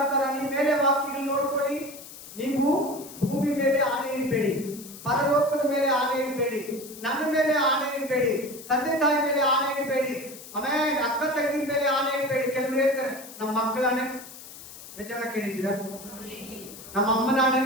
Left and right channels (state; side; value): noise; left; hiss, 15 dB below the sound